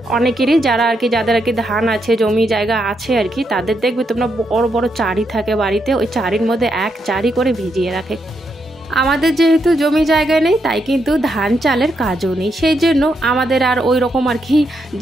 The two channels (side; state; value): both; normal; correlation 0.80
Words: অনেকেরই যারা যাদের ধান আছে, জমি জায়গা আছে তাদের দেখবে তোমরা বড় বড় চারি থাকে বাড়িতে, ওই চারির মধ্যে এক চারি করে ভিজিয়ে রাখে। আমাদের যেহেতু জমি জায়গা নেই, তাই কিন্তু ধান চালের কাজও নেই, সেই জন্য আমাদের আর ওই রকম